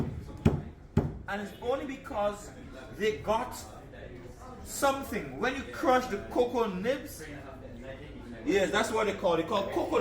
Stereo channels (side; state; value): both; identical; correlation 1.00